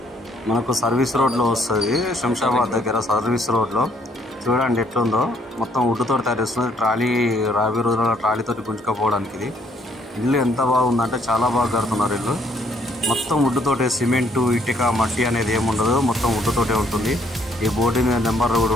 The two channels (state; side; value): normal; both; correlation 0.67